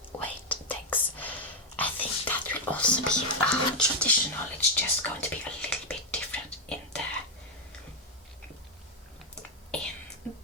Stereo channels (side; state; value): both; normal; correlation 0.02